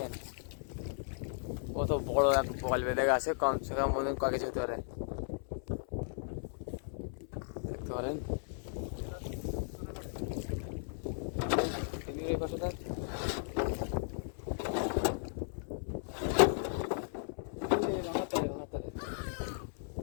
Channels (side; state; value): right; silent; 54 dB below the other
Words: কত বড় এক বল বেঁধে গেছে, কমসে কম বন্ধুগণ কয় কেজি হতে পারে দেখতে পারেন। এই পাশে দেখ,